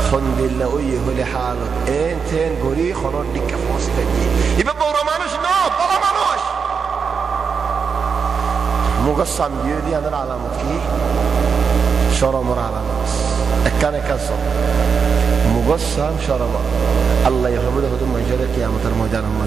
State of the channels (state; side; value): quieter; left; 5.9 dB